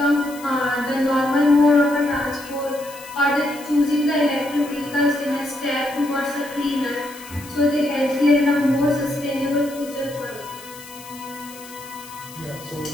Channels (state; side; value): noise; left; hiss, 18 dB below the sound